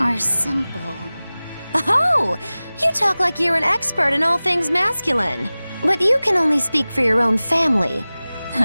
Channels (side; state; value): both; inverted; correlation -0.98